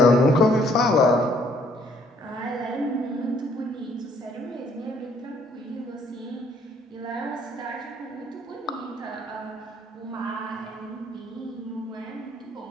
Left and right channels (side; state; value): both; normal; correlation 0.64